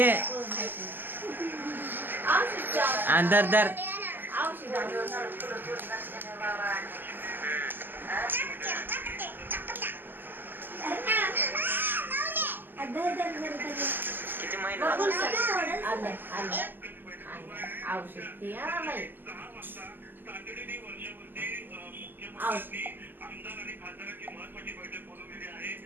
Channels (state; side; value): late; left; 0.092 ms